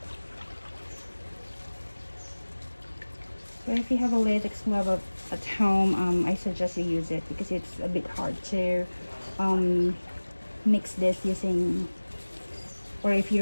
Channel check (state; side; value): inverted; both; correlation -1.00